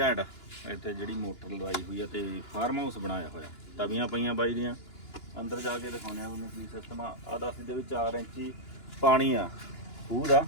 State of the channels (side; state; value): right; late; 2.9 ms